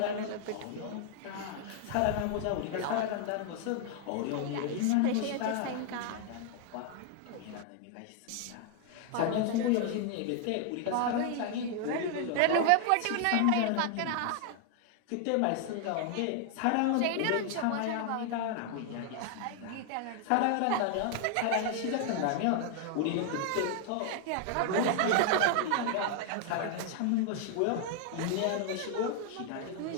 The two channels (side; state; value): both; different; correlation 0.00